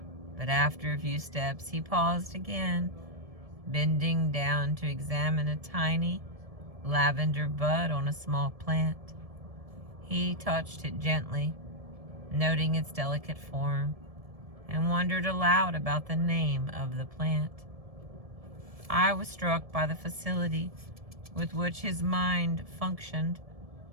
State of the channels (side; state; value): left; late; 1.7 ms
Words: but after a few steps he paused again, bending down to examine a tiny lavender bud on a small plant. He touched it gently, noting its delicate form, and wondered aloud about the name of the plant. I was struck by the facility with which his mind functioned.